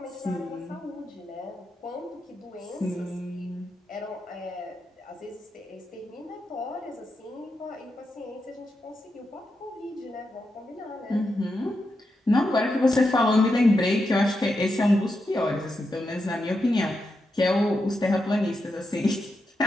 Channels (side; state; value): both; normal; correlation 0.86